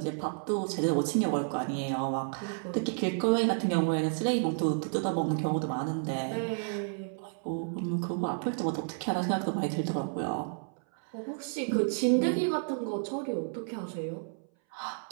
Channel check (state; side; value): silent; left; 57 dB below the other